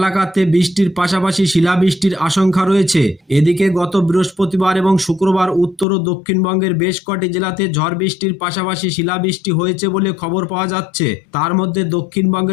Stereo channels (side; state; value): right; drops out; at 5.9 s